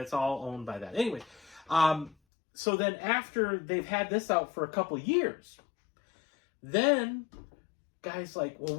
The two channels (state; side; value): drops out; right; at 2.1 s